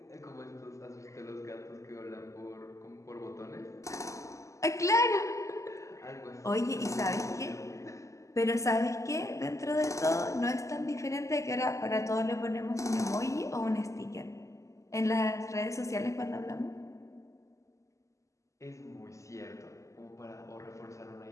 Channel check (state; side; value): late; right; 0.15 ms